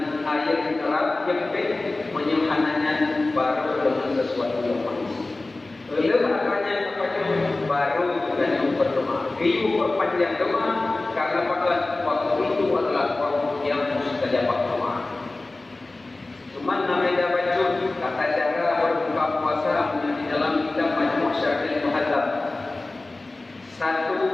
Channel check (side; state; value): right; quieter; 3.1 dB